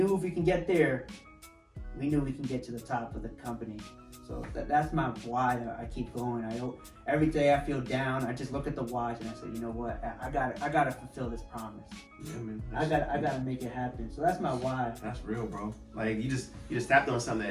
if we can get there, we knew we can get to the top of the company. So that's my why I keep going. Every day I feel down, I just look at the watch and I say, you know what, I gotta fulfill this promise. Yeah, man. I gotta make it happen. So that's my why. That's real, bro. Like you just tapped on something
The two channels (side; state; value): both; identical; correlation 1.00